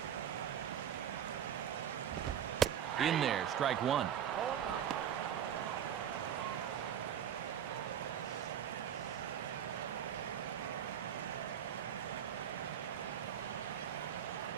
In there, strike 1.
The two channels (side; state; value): left; quieter; 9.4 dB